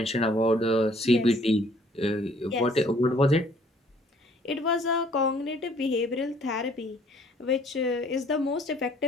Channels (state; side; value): normal; both; correlation 0.59